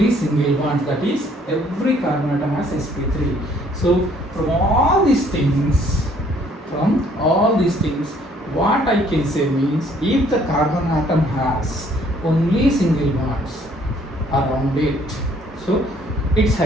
single bond, that is, every carbon atom has sp3. So from all these things, what I can say means, if the carbon atom has only single bonds around it, so its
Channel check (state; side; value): normal; both; correlation 0.62